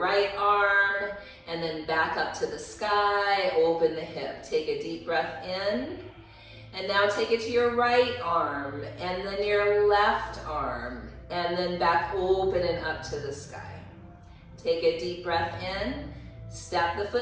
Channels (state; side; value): identical; both; correlation 1.00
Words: arm, and then back up to the sky. Open the hip. Take a deep breath in, and now take it to your right arm, and then your left arm. and then back open and up to the sky. Take a deep breath in, step the